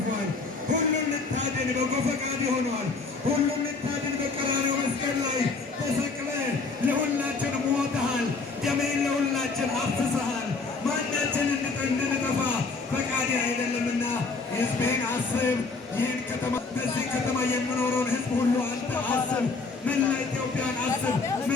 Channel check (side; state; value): right; quieter; 4.2 dB